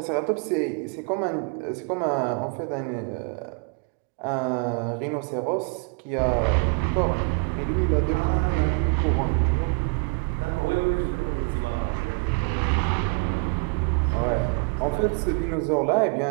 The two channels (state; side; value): quieter; left; 33.9 dB